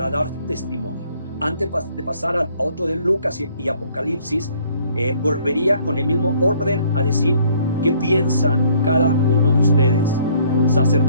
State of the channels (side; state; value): both; inverted; correlation -0.61